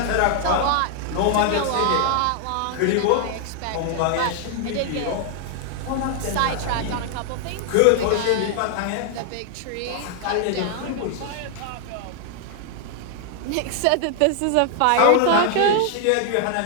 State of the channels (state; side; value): different; both; correlation 0.00